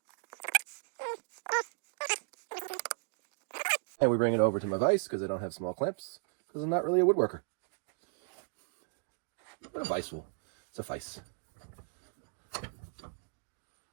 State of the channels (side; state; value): left; silent; digital silence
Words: And we bring it over to my vise because I don't have small clamps because I'm not really a woodworker. But a vise will suffice.